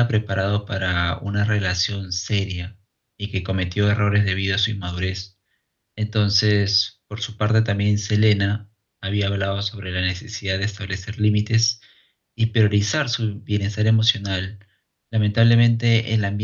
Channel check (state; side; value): identical; both; correlation 1.00